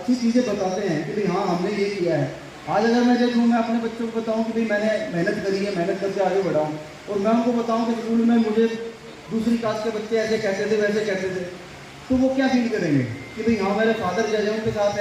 चीज़ें बताते हैं कि भाई हाँ हमने ये किया है। आज अगर मैं देखूँ, मैं अपने बच्चों को बताऊँ कि भाई मैंने मेहनत करी है, मेहनत करके आगे बढ़ा हूँ, और मैं उनको बताऊँ कि स्कूल में मुझे दूसरी कास्ट के बच्चे ऐसे कहते थे वैसे कहते थे, तो वो क्या फील करेंगे कि भाई हाँ मेरे फादर जैसे उनके साथ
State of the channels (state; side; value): identical; both; correlation 1.00